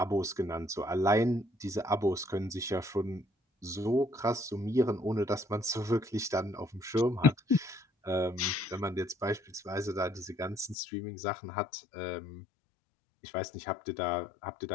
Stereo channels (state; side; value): drops out; right; at 10.8 s